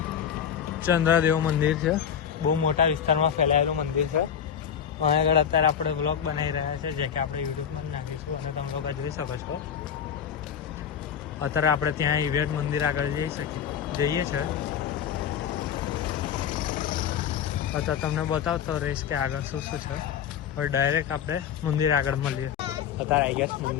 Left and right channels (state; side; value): quieter; right; 8.4 dB